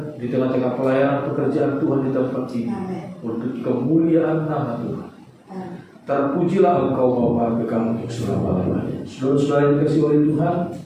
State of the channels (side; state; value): both; identical; correlation 1.00